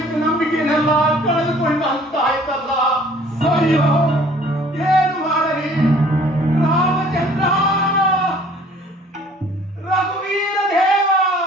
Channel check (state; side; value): normal; both; correlation 0.53